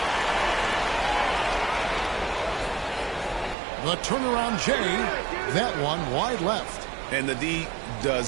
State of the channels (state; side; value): drops out; left; at 3.6 s